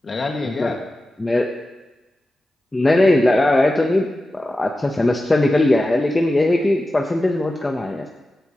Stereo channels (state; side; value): normal; both; correlation 0.93